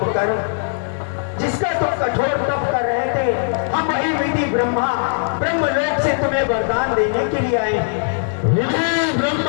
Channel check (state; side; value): silent; right; digital silence